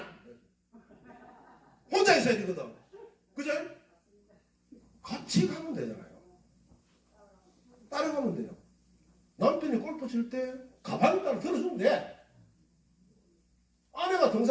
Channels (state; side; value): identical; both; correlation 1.00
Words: 혼자 있어야 되거든. 그죠? 같이 가면 되잖아요. 따라가면 돼요. 남편이 골프 칠 때 가방을 따라 들어주면 돼. 아내가